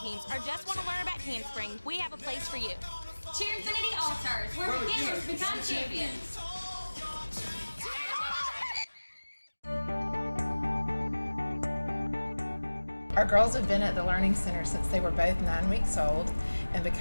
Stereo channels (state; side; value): inverted; both; correlation -1.00